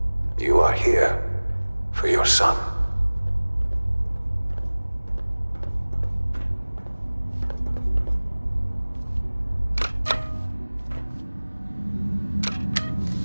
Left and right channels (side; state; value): both; inverted; correlation -1.00